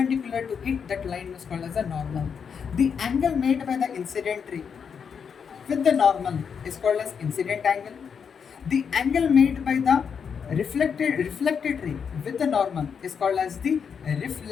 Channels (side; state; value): right; quieter; 6.7 dB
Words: to it, that line is called as a normal. The angle made by the incident ray with the normal is called as incident angle. The angle made by the reflected ray with the normal is called as the